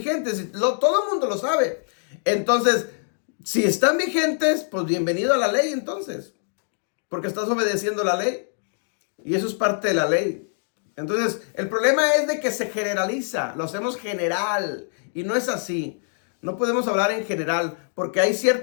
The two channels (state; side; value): silent; right; digital silence